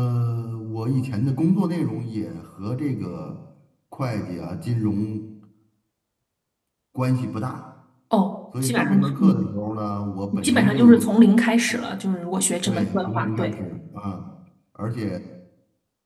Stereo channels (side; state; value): both; identical; correlation 1.00